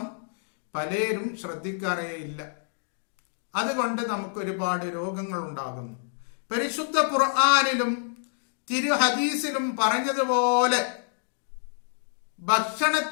പലരും ശ്രദ്ധിക്കാറേയില്ല. അതുകൊണ്ട് നമുക്ക് ഒരുപാട് രോഗങ്ങൾ ഉണ്ടാകുന്നു. പരിശുദ്ധ ഖുർആനിലും തിരു ഹദീസിലും പറഞ്ഞതുപോലെ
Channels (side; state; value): right; silent; digital silence